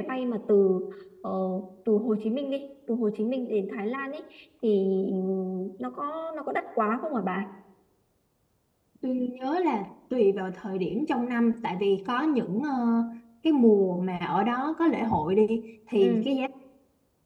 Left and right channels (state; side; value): identical; both; correlation 1.00